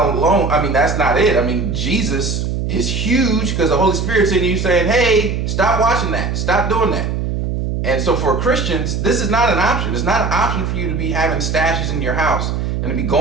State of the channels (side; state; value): right; noise; hum, 2 dB below the sound